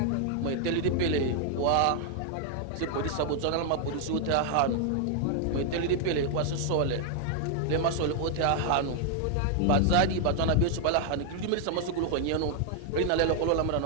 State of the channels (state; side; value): different; both; correlation 0.00